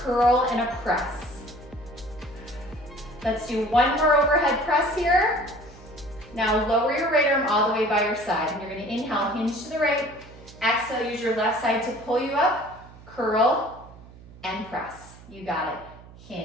and a press. Let's do one more overhead press here. Now lower your right arm all the way by your side. And you're gonna inhale, hinge to the right. Exhale, use your left side to pull you up. Curl and press. You got it.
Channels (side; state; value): right; noise; hum, 20 dB below the sound